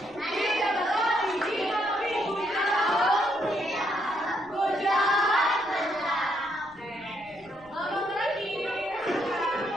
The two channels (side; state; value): left; noise; rumble, 29 dB below the sound